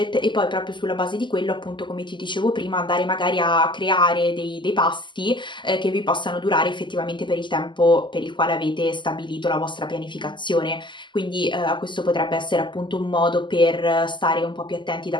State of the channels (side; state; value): right; late; 0.23 ms